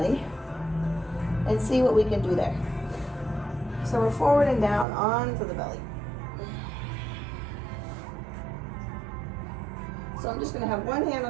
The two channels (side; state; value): left; drops out; at 4.9 s